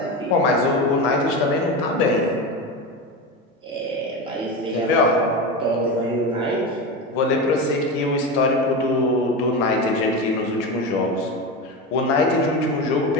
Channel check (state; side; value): normal; both; correlation 0.21